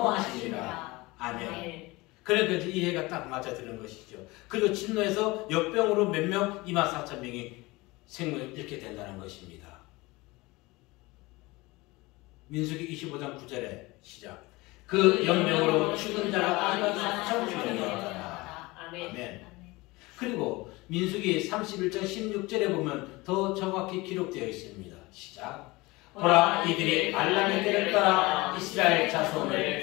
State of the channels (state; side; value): quieter; right; 22.2 dB